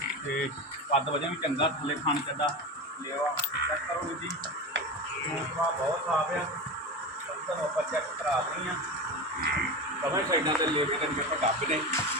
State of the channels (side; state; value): both; normal; correlation 0.24